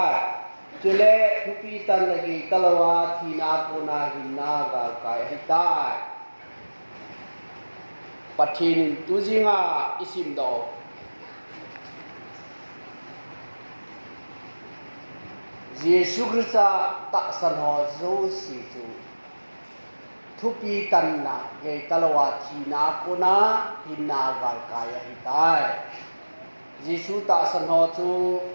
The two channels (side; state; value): both; inverted; correlation -1.00